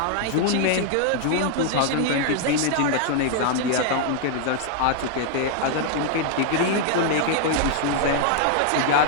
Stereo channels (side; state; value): both; different; correlation 0.00